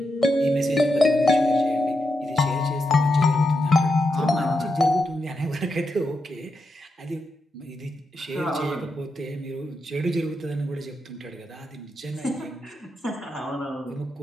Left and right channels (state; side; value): normal; both; correlation 0.85